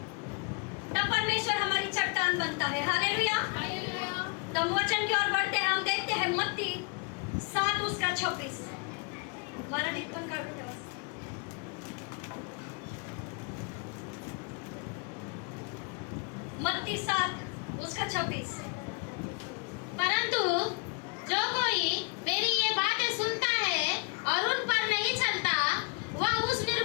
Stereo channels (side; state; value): right; quieter; 32.3 dB